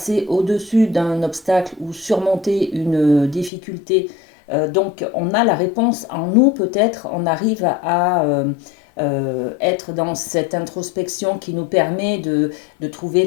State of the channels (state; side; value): drops out; right; at 3.5 s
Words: au-dessus d'un obstacle ou surmonter une difficulté. Donc on a la réponse en nous, peut-être, on arrive à être dans cette introspection qui nous permet de trouver